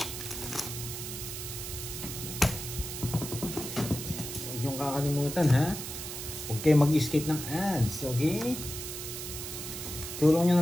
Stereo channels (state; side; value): noise; right; hiss, 7 dB below the sound